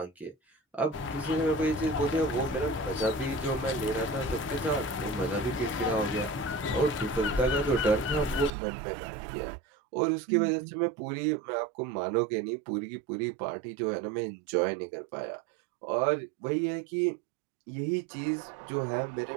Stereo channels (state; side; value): drops out; left; at 8.5 s